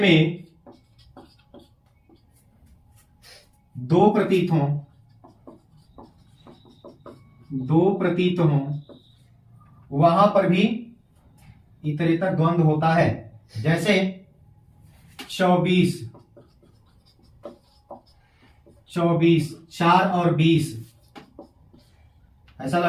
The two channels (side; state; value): both; identical; correlation 1.00